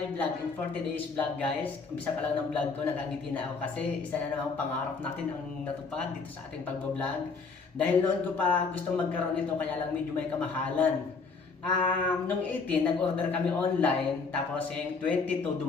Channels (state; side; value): quieter; right; 4.6 dB